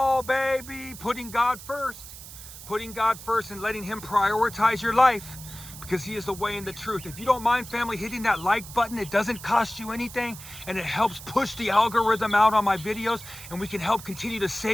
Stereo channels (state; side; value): noise; right; hiss, 14 dB below the sound